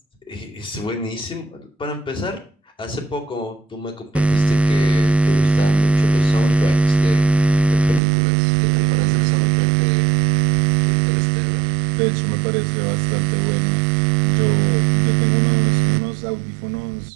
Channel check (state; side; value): drops out; left; at 8.0 s